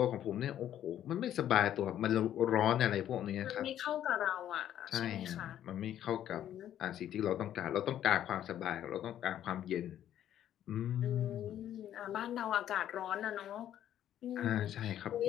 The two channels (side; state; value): right; quieter; 11.1 dB